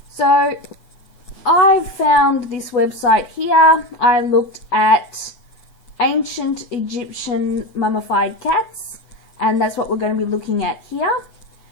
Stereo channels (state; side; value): late; right; 8.0 ms